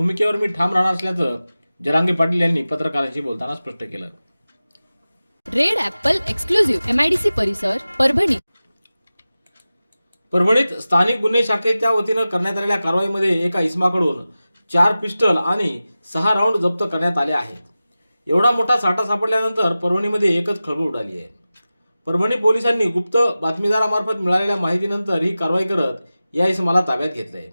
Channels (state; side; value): inverted; both; correlation -0.95